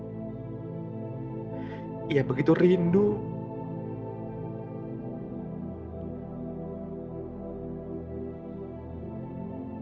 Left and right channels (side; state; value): both; identical; correlation 1.00